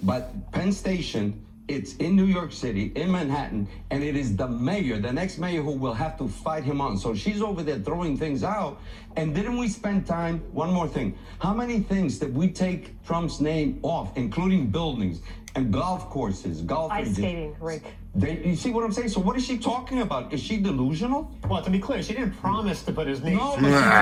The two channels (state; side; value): identical; both; correlation 1.00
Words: Penn Station, it's in New York City, in Manhattan, and it is the mayor, the next mayor, who will have to fight him on. So she's over there throwing things out. And didn't we spend time? One more thing. How many things did we take Trump's name off, including buildings and golf courses, golf Ice ranges? skating, Rick. You see what I'm saying? So what is she talking about? Is she delusional? Well, to be clear, she didn't promise to put his name. No, but